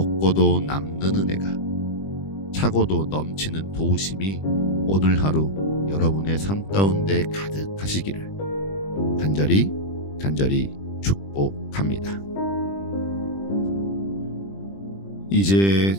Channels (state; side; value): late; right; 20 ms